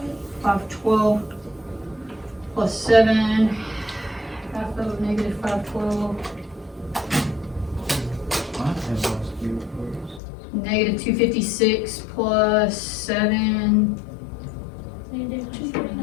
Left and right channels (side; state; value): right; drops out; at 10.2 s